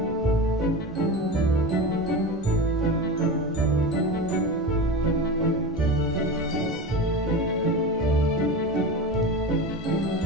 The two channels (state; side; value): normal; both; correlation 0.26